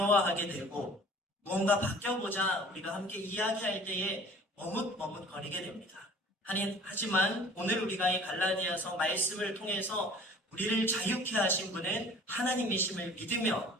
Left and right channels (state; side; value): normal; both; correlation 0.48